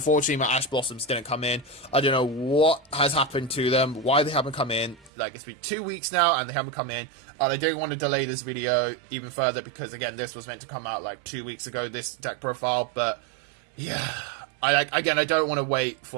my Ash Blossoms didn't come in. I don't know what has happened to them, why they haven't come in. Like, it's been 2 weeks now and they haven't come in, and I don't want to delay this video even further because, again, this was meant to come out like 2 weeks ago, this deck profile, but yeah. I don't want to wait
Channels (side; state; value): left; drops out; at 5.1 s